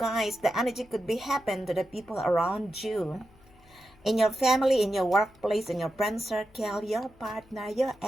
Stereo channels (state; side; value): noise; left; hum, 27 dB below the sound